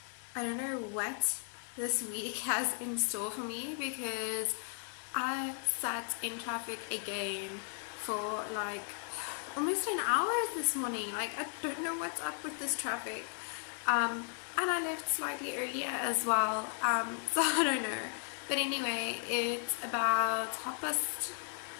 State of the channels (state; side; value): silent; right; 54 dB below the other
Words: I don't know what this week has in store for me, because I sat in traffic again for like almost an hour this morning. Like, I don't know what's up with this traffic. And I left slightly earlier as well. So I don't know. But anyway, it's about